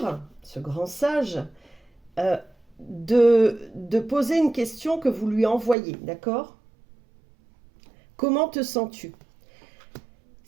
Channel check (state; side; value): drops out; left; at 5.8 s